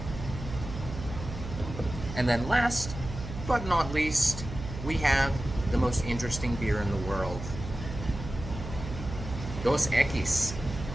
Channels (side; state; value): right; noise; hum, 9 dB below the sound